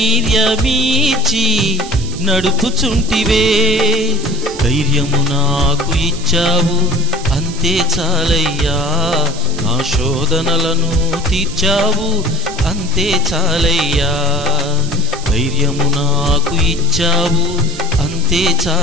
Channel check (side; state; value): right; noise; hiss, 14 dB below the sound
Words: నడుపుచుంటివే. ధైర్యము నాకు ఇచ్చావు అంతే చాలయ్యా, నా శోధనలను తీర్చావు అంతే చాలయ్యా. ధైర్యము నాకు ఇచ్చావు అంతే